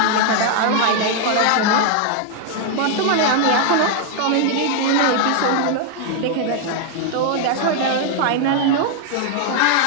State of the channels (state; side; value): different; both; correlation 0.00